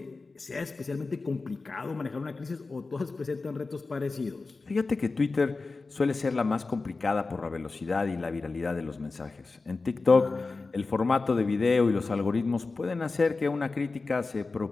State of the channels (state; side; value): quieter; right; 3.8 dB